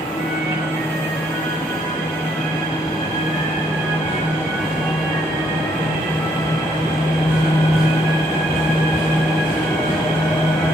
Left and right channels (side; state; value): both; normal; correlation 0.70